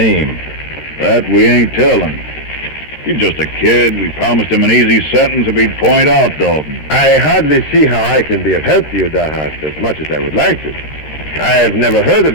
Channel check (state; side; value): late; right; 13 ms